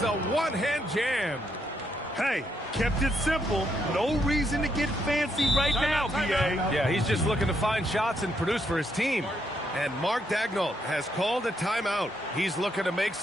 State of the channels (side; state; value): both; normal; correlation 0.76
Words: a one-hand jam. Hey, kept it simple. No reason to get fancy right now, B.A. Yeah, he's just looking to find shots and produce for his team. And Mark Daigneault has called a timeout. He's looking to make